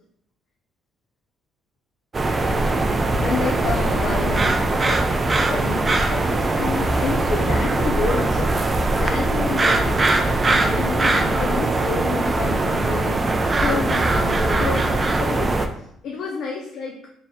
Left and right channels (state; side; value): normal; both; correlation 0.84